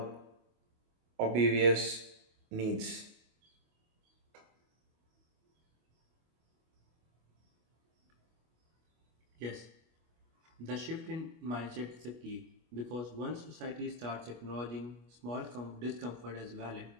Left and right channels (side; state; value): left; late; 25 ms